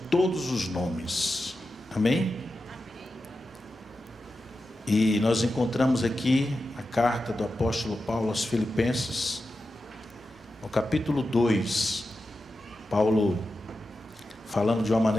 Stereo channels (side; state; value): both; normal; correlation 0.91